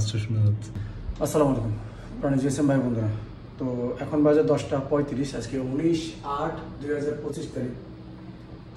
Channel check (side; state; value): both; identical; correlation 1.00